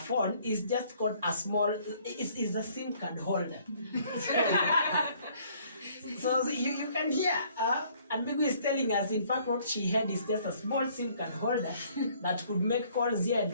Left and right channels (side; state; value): both; inverted; correlation -0.61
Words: it's just called a small, it's a SIM card holder. So you can hear, and Migwi is telling us, in fact, what she had is just a small SIM card holder that could make calls here and